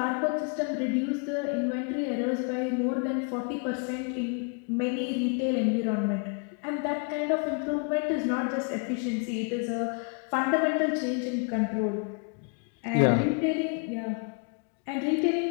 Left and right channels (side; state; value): right; quieter; 37.6 dB